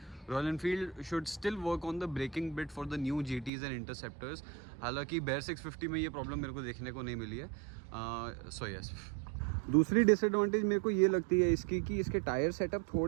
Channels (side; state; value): left; drops out; at 3.5 s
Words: Royal Enfield should still work on the braking bit for the new GTs and interceptors. हालांकि Bear 650 में ये प्रॉब्लम मेरे को देखने को नहीं मिली है. So yes. दूसरी डिसएडवांटेज मेरे को ये लगती है इसकी कि इसके टायर सेटअप